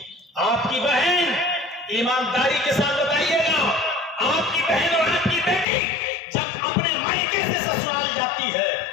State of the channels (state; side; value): drops out; right; at 5.7 s